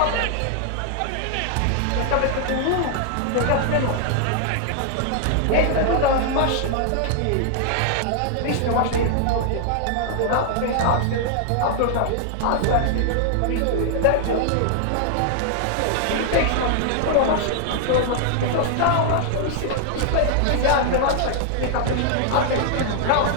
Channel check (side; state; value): both; different; correlation 0.00